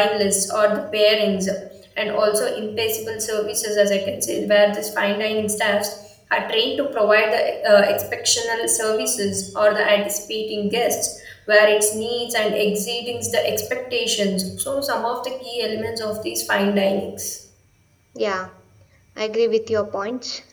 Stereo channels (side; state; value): both; identical; correlation 1.00